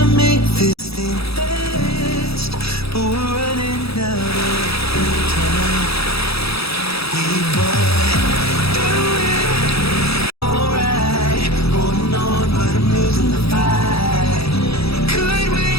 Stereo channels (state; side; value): late; right; 0.77 ms